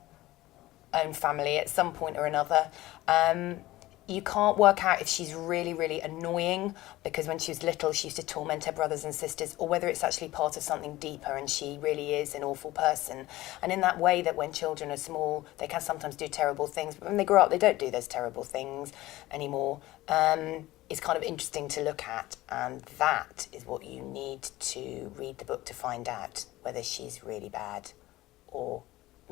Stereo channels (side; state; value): right; quieter; 17.5 dB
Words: own family at some point or another. You can't work out if she's really, really annoying because when she was little she used to torment her brothers and sisters, or whether it's actually part of something deeper and she really is an awful person. And in that way that when children are small they can sometimes do terrible things, but when they grow up they don't do those terrible things anymore. It's kind of interesting to look at, and that is what you need to read the book to find out whether she's really bad or